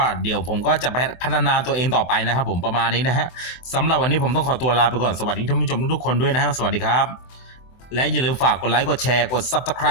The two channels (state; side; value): late; right; 24 ms